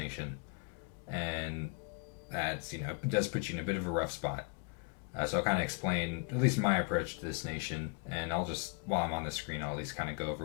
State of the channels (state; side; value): quieter; right; 33.5 dB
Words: and that's it does put you in a bit of a rough spot. So I'll kind of explain at least my approach to this nation, and I'll just, while I'm on the screen, I'll at least kind of go